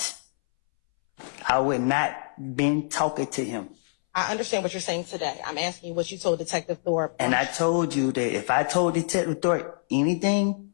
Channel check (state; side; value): silent; right; 61 dB below the other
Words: I would not been talking to him. I understand what you're saying today. I'm asking you what you told Detective Thorpe. And I told you that if I told Detective Thorpe anything,